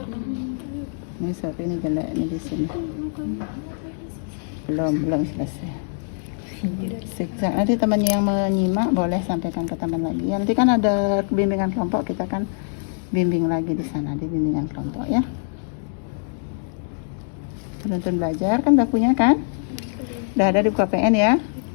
Ini sorry, ini jelek ini di sini. Belum selesai. Zigzag. Nanti temannya yang menyimak boleh sampaikan ke teman lagi. Ya, nanti kan ada bimbingan kelompok, kita kan bimbing lagi di sana di bimbingan kelompok ya. Penuntun belajar kan udah punya kan? Udah ada di KPN ya?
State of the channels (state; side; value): silent; right; digital silence